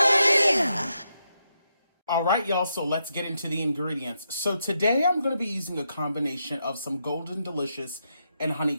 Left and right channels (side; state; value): both; inverted; correlation -0.83